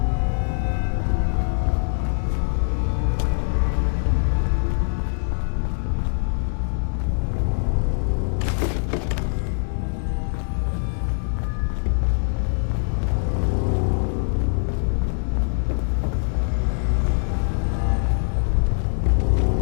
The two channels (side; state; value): right; silent; 63 dB below the other